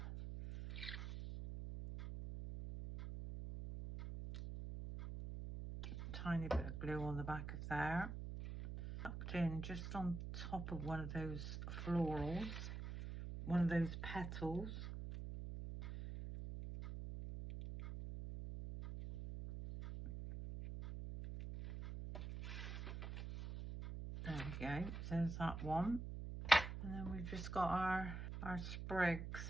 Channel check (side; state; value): right; noise; hum, 6 dB below the sound